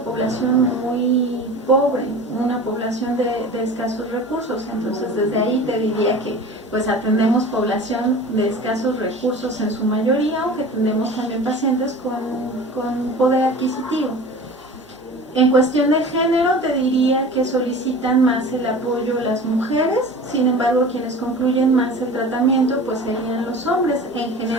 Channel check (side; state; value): both; normal; correlation 0.38